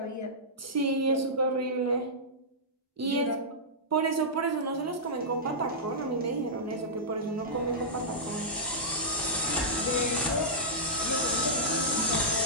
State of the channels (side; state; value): both; normal; correlation -0.14